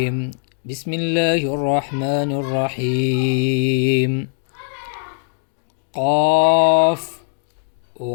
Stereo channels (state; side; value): silent; right; digital silence